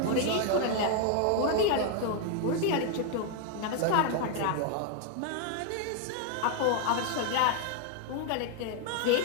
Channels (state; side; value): different; both; correlation 0.00